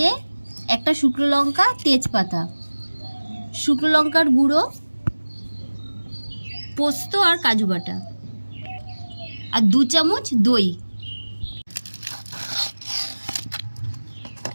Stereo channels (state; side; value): inverted; both; correlation -1.00